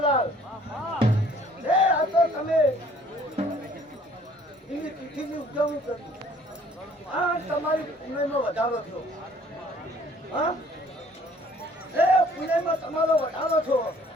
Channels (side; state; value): both; normal; correlation 0.57